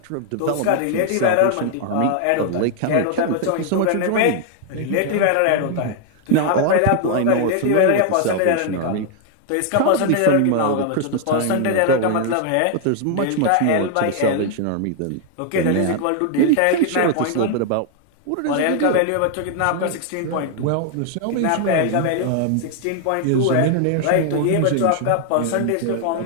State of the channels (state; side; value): different; both; correlation 0.00